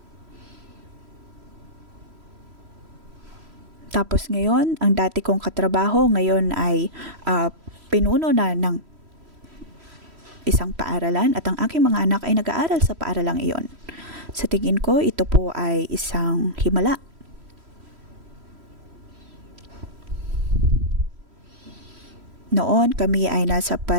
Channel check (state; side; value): late; left; 3.1 ms